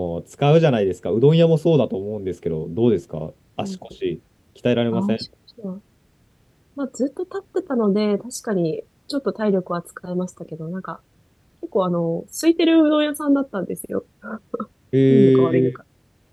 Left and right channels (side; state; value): both; identical; correlation 1.00